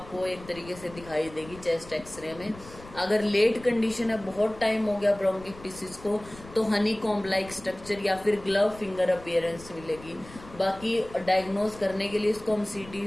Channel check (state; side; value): noise; left; rumble, 18 dB below the sound